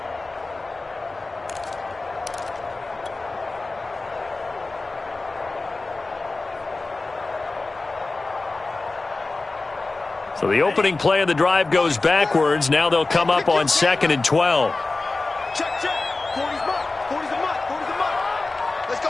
So the opening play of the drive goes backwards. Now they'll come up on 2nd and 12. Check, check. 40's mark. 40's a mark. 40's a mark. Let's go,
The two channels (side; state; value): right; quieter; 3.4 dB